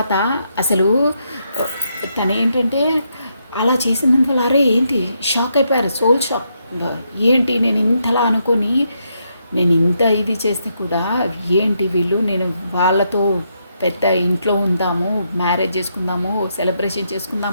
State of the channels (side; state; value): both; inverted; correlation -0.79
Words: అసలు తను ఏంటంటే అలా చేసినందువల్ల అరే ఏంటి షాక్ అయిపోయారు, సోల్ షాక్. ఏంటి నేను ఇంతలా అనుకొని నేను ఇంత ఇది చేస్తే కూడా ఏంటి వీళ్ళు, నేను వాళ్ళతో పెద్ద ఇంట్లో ఉందాము, మ్యారేజ్ చేసుకుందాము, సెలబ్రేషన్